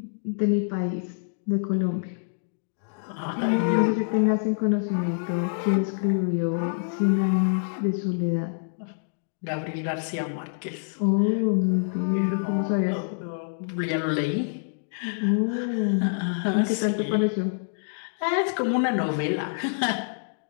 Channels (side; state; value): right; silent; digital silence